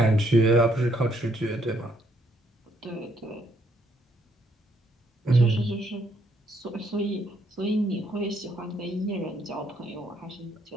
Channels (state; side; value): normal; both; correlation 0.71